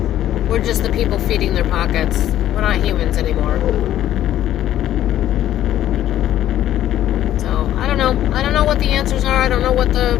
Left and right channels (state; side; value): quieter; right; 12.3 dB